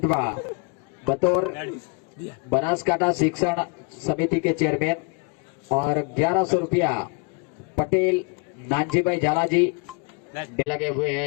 बतौर बनासकांठा शिक्षण समिति के चेयरमैन और 1100 रुपया पटेल नानजी भाई झाला जी लगे हुए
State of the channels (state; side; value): quieter; right; 33.5 dB